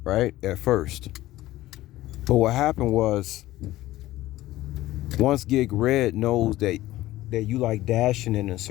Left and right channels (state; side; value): quieter; right; 16.1 dB